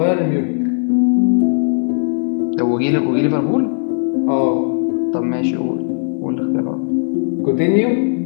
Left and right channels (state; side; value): silent; right; digital silence